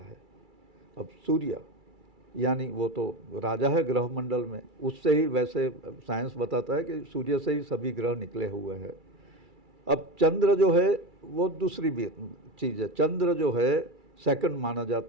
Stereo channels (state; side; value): late; left; 2.3 ms